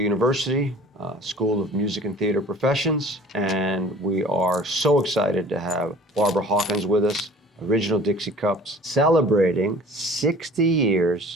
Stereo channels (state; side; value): normal; both; correlation 0.45